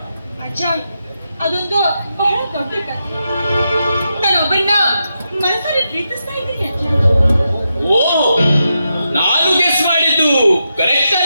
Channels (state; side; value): inverted; both; correlation -0.86